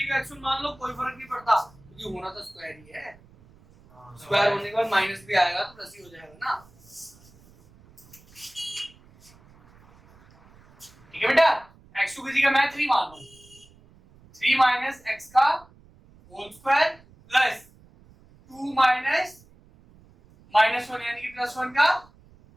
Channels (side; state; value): right; noise; rumble, 27 dB below the sound